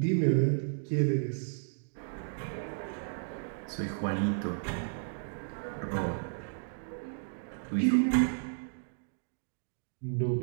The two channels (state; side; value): silent; left; digital silence